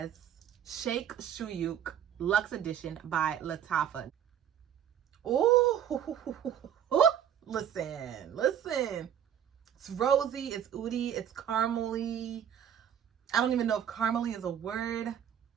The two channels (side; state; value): left; quieter; 9.4 dB